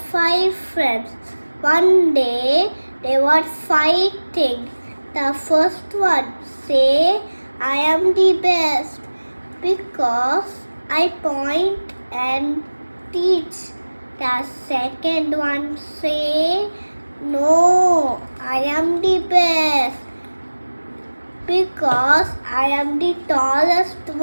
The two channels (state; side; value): inverted; both; correlation -1.00